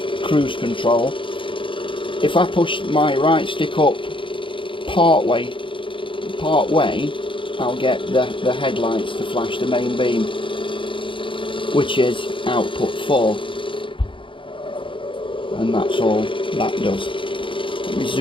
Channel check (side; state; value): right; late; 0.25 ms